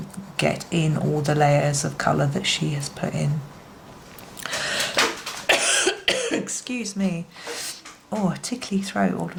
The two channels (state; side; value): identical; both; correlation 1.00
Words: get in all the layers of colour that she has put in. Excuse me. Oh, a tickly throat all of